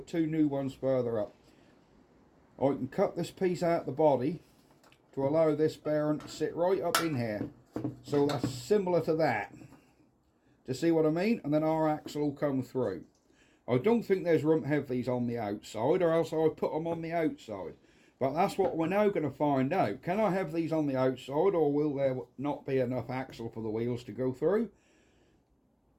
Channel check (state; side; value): identical; both; correlation 1.00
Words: two new ones further up. I can cut this piece out of the body to allow this bearing to sit right up in here. So that's similar to that. To see what I mean? And then our axle will come through. I don't think there's room to have these on the outside, or else I would put them on the outside. But that's what we're now going to find out. Can I have these on the outside, or will there not be enough axle for the wheels to go through?